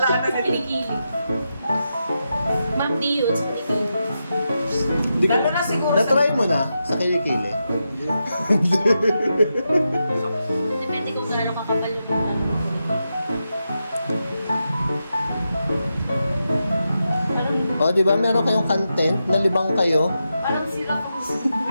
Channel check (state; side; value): inverted; both; correlation -0.87